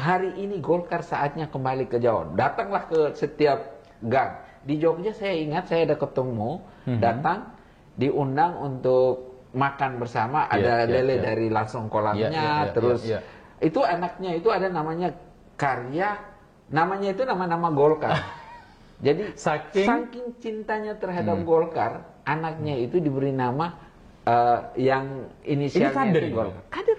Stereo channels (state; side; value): identical; both; correlation 1.00